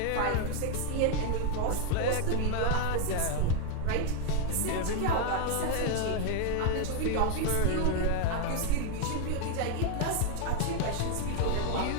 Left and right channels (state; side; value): different; both; correlation 0.00